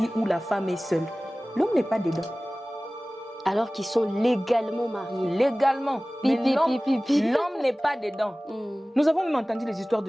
où la femme est seule. L'homme n'est pas dedans. Alors qu'ils sont légalement mariés. Légalement. Mais l'homme n'est pas dedans. Nous avons même entendu les histoires de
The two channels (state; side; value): normal; both; correlation 0.98